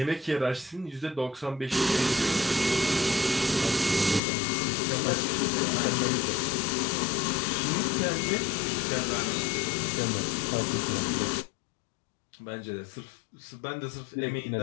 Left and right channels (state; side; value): drops out; right; at 4.2 s